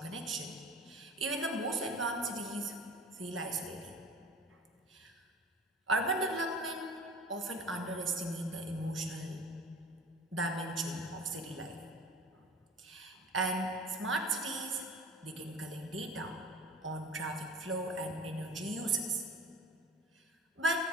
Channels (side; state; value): both; normal; correlation 0.40